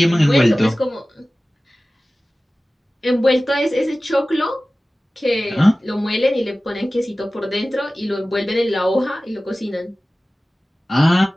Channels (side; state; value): both; normal; correlation 0.97